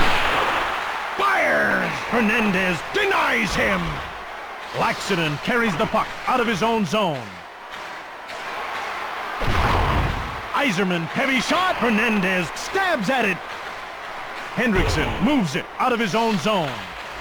Fires! Hernandez denies him. Laxinen carries the puck out of his own zone. Iserman, heavy shot. Hernandez stabs at it. Hendrickson moves it out of his own zone.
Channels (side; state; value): both; identical; correlation 1.00